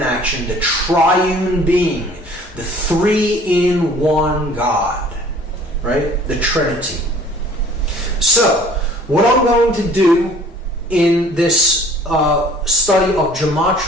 action, the triune being, the 3-in-1 God, right? The Trinity. So, what I'm going to do in this study of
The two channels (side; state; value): both; normal; correlation 0.52